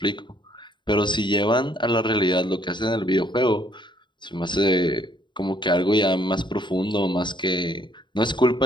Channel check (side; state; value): right; late; 0.22 ms